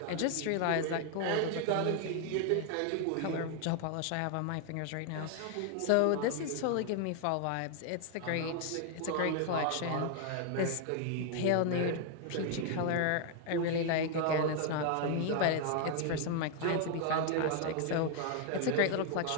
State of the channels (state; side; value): different; both; correlation 0.00